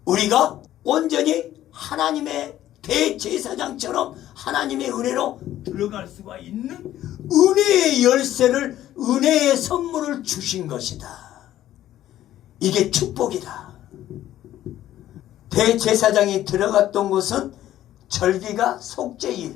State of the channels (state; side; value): quieter; right; 13.0 dB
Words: 우리가 온전히 하나님의 대제사장처럼 하나님의 은혜로 들어갈 수가 있는 은혜의 열쇠를 은혜의 선물을 주신 것이다. 이게 축복이다. 대제사장이 들어갔던 곳은 절기가